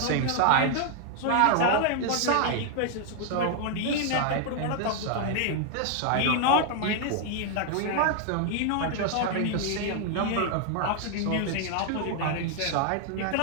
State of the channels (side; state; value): both; different; correlation 0.00